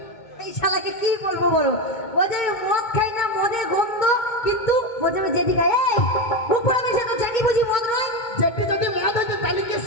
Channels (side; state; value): right; late; 2.2 ms